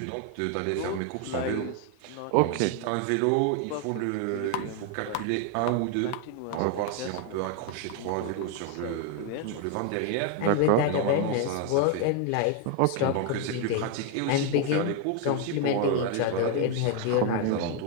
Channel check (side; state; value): both; different; correlation 0.01